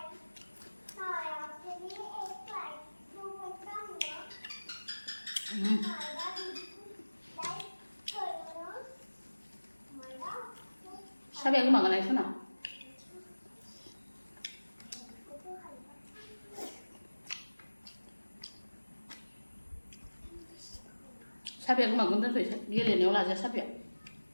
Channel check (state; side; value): inverted; both; correlation -1.00